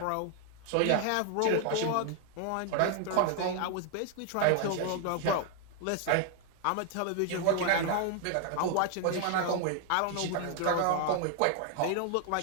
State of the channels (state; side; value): different; both; correlation 0.00